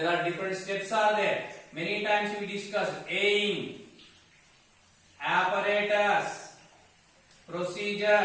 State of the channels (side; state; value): both; identical; correlation 1.00